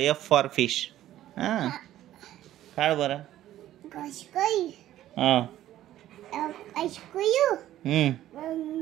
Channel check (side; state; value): left; quieter; 13.3 dB